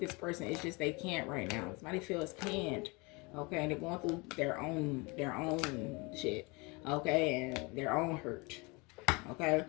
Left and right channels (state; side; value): quieter; right; 27.4 dB